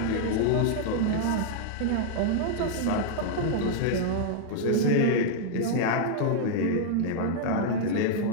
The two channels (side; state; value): both; different; correlation -0.01